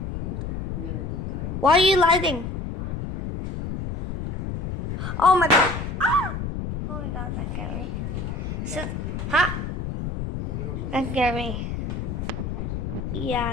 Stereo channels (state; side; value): noise; left; rumble, 4 dB below the sound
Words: Why are you lighting? Oh my god. Ah! Oh my god, that scared me. So, huh? That scared me.